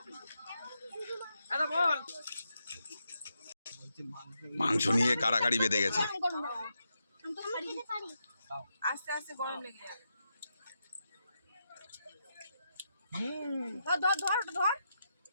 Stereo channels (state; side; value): inverted; both; correlation -0.84